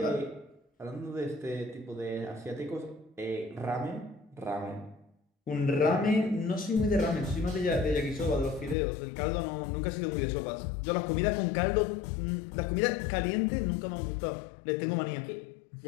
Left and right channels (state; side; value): drops out; right; at 8.8 s